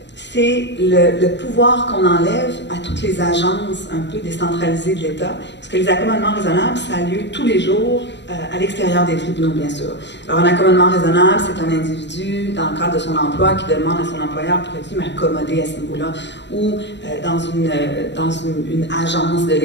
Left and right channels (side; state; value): right; late; 0.52 ms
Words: c'est le pouvoir qu'on enlève à toutes les agences un peu décentralisées de l'État, parce que les accommodements raisonnables, ça a lieu tous les jours à l'extérieur des tribunaux, bien sûr. Alors, un accommodement raisonnable, c'est un individu, dans le cadre de son emploi, qui demande à son employeur, pourrait-il m'accommoder à ce niveau-là, ou dans une agence de